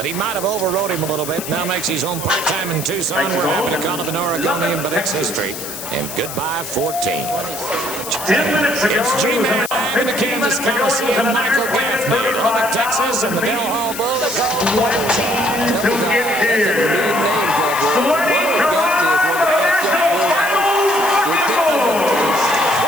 he might have overrode him a little bit. Now makes his home part-time in Tucson. We're happy to call it an Oregonian, but it's history. And goodbye, 14. 10 minutes ago. It's G-Man in the Kansas Coliseum, Michael Gaffney, Lubbock, Texas, and the Del Hall Bull. To get here. Sweaty Colorado National Final Bull.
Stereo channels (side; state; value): left; noise; hiss, 9 dB below the sound